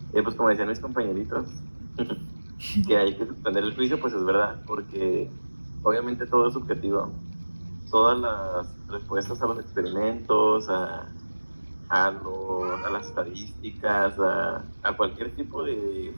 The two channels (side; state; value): both; inverted; correlation -1.00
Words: Y pues como decían mis compañeritos, que hay que suspender el juicio, pues es verdad, porque obviamente todo es subjetivo. Todas las respuestas a los experimentos, a las estadísticas, a cualquier tipo de